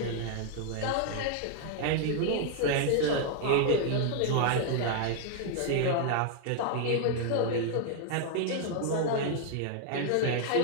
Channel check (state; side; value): different; both; correlation 0.00